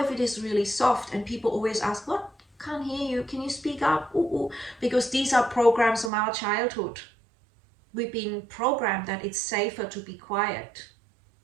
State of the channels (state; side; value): drops out; left; at 6.1 s